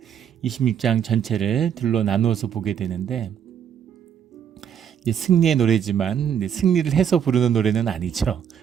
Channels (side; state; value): left; quieter; 8.5 dB